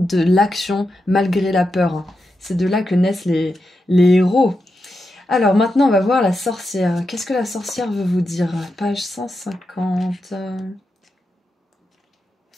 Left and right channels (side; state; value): both; normal; correlation 0.87